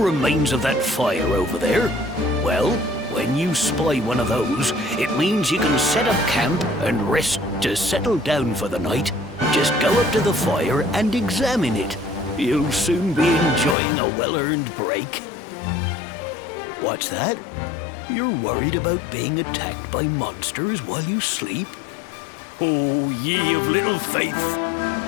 of that fire over there? Well, when you spy one of those, it means you can set up camp and rest to settle down for the night. Just go up to the fire and examine it. You'll soon be enjoying a well-earned break. What's that? You're worried about being attacked by monsters while you sleep? Oh, ye of little faith!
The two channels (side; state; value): right; drops out; at 13.8 s